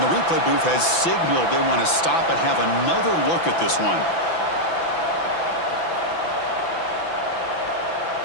the replay booth has signaled they want to stop and have another look at this one.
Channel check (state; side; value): late; right; 6.0 ms